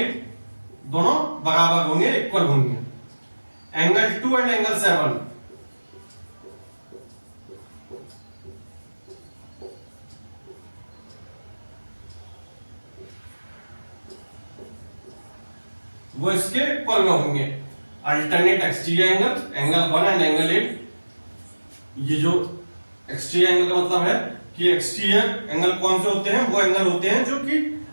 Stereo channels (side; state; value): both; inverted; correlation -1.00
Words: दोनों बराबर होंगे, इक्वल होंगे। एंगल 2 एंड एंगल 7 वो इसके इक्वल में होंगे। Alternate exterior angle, angle 1 and angle 8। ये जो एक्सटीरियर एंगल का मतलब है कि एक्सटीरियर एंगल कौन से होते हैं? वो एंगल होते हैं जो कि